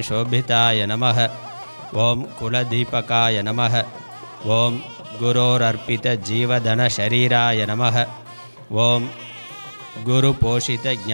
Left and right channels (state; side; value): inverted; both; correlation -1.00